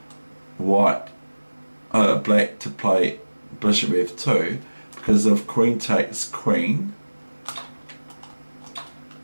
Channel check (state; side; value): inverted; both; correlation -1.00